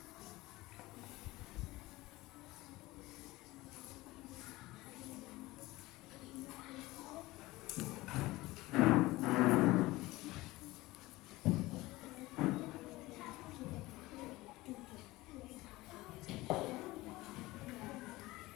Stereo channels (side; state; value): right; quieter; 19.5 dB